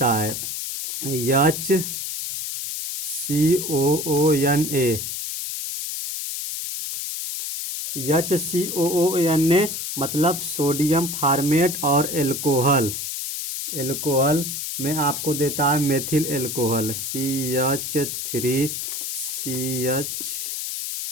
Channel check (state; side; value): noise; left; hiss, 4 dB below the sound